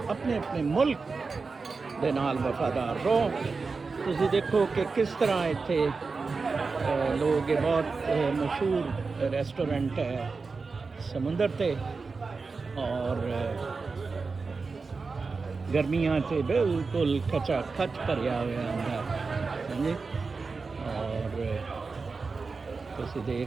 ਆਪਣੇ ਆਪਣੇ ਮੁਲਕ ਦੇ ਨਾਲ ਵਫਾਦਾਰ ਰਹੋ। ਤੁਸੀਂ ਦੇਖੋ ਕਿ ਕਿਸ ਤਰ੍ਹਾਂ ਇੱਥੇ ਲੋਕ, ਇਹ ਬਹੁਤ ਮਸ਼ਹੂਰ ਰੈਸਟੋਰੈਂਟ ਹੈ ਸਮੁੰਦਰ 'ਤੇ, ਔਰ ਗਰਮੀਆਂ 'ਚ ਬਿਲਕੁਲ ਖਚਾ ਖਚ ਭਰਿਆ ਹੋਇਆ ਹੁੰਦਾ ਹਾਂਜੀ। ਔਰ ਤੁਸੀਂ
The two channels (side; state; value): left; quieter; 4.4 dB